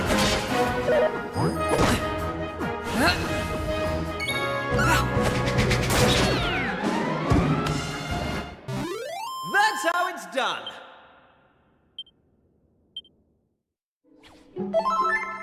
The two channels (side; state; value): both; identical; correlation 1.00